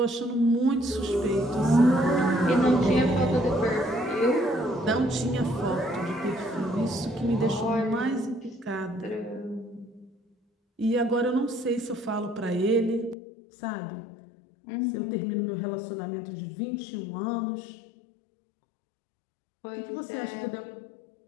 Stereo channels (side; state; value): right; drops out; at 13.2 s